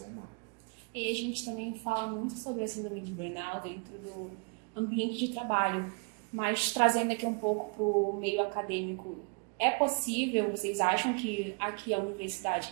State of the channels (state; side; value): quieter; left; 35.7 dB